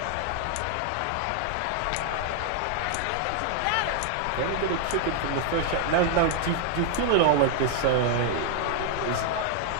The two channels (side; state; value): both; different; correlation 0.00